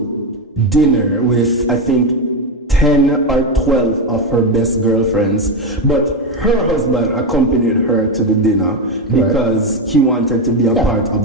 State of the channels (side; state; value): both; normal; correlation 0.11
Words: dinner with, I think, 10 or 12 of her best girlfriends, but her husband accompanied her to the dinner because he wanted to be a part of